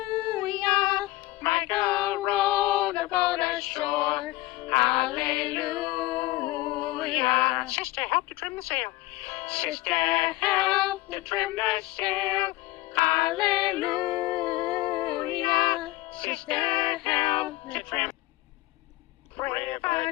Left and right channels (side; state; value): right; quieter; 18.6 dB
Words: Michael rowed the boat ashore. Hallelujah. Sister, help to trim the sail. Sister, help to trim the sail. Hallelujah. Sister, help to trim.